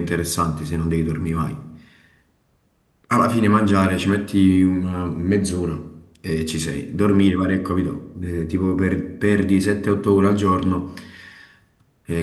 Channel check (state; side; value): identical; both; correlation 1.00